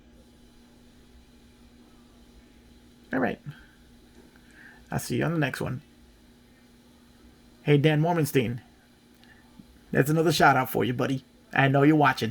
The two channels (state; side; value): identical; both; correlation 1.00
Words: All right. I'll see you on the next one. Hey, Dan Mormenstein. That's another shout out for you, buddy. I know you're